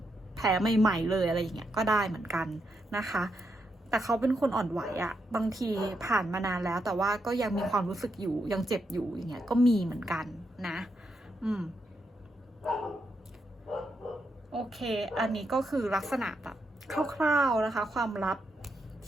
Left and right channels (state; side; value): normal; both; correlation 0.82